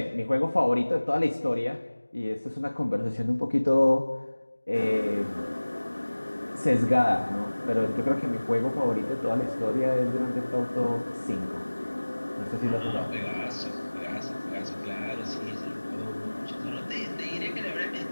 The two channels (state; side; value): inverted; both; correlation -1.00